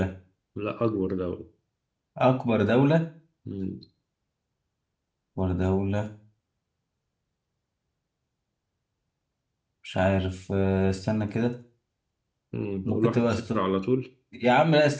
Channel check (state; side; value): identical; both; correlation 1.00